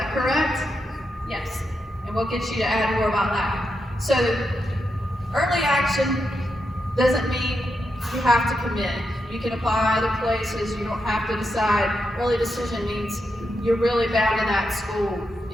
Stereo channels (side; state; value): both; normal; correlation 0.85